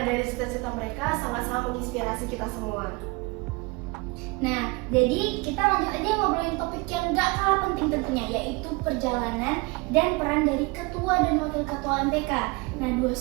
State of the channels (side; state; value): left; quieter; 26.5 dB